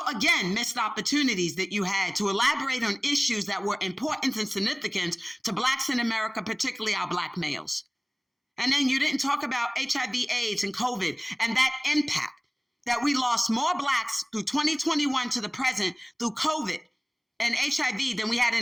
again, missed opportunities that you had to elaborate on issues that were important and significant to Blacks in America, particularly our Black males. And then you didn't talk about HIV, AIDS, and COVID and that impact that we lost more Blacks through 2021 to the present through COVID and HIV than we had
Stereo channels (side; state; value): both; identical; correlation 1.00